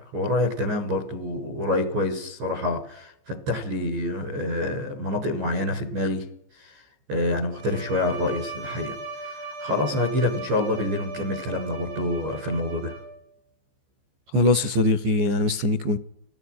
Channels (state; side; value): late; left; 15 ms